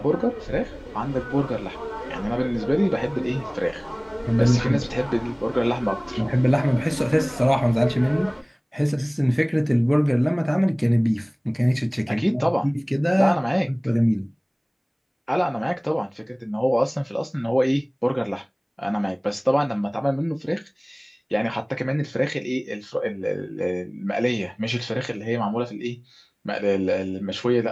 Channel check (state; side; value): identical; both; correlation 1.00